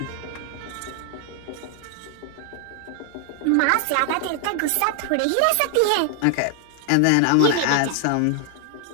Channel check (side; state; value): both; different; correlation 0.00